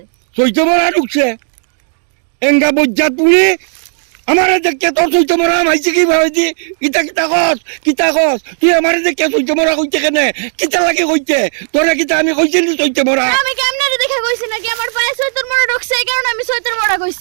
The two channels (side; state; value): left; silent; digital silence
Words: চৈতে মরা ঢুকছে। এঙ্গা বজ্জাত পুরি আমারে দেখে তোর চৈতে মরা মাইছে কি ভাইছি? কিতা কস তুই আমারে দেখে চৈতে মরা কইতে কেনে? কিতা লাগে কইতে? তোরে কিতা আমি কইছি নি চৈতে মরা? আমি কেমনে দেখে কইছি নাকি আমার পায়ে চৈতের মরা ঢুকছে এই কারণে আমি চৈতের মরা